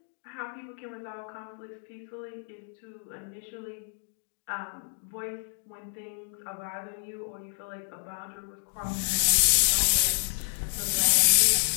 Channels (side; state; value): right; silent; 58 dB below the other